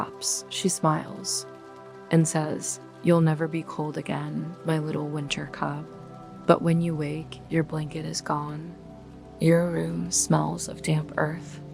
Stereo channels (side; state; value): both; identical; correlation 1.00